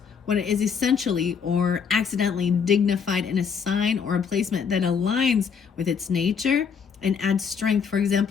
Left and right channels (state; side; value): quieter; right; 6.5 dB